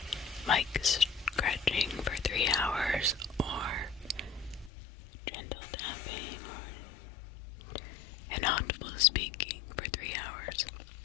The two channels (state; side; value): drops out; right; at 4.7 s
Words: mic scratching for 3 hours, or gentle tapping, or inaudible speaking for 3 hours.